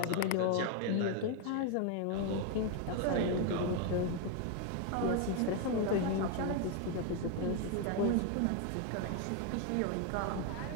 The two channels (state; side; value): different; both; correlation 0.01